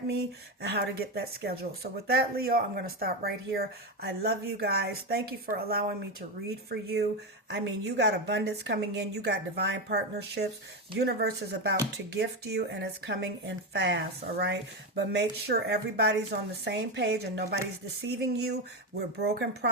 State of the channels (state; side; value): normal; both; correlation 0.13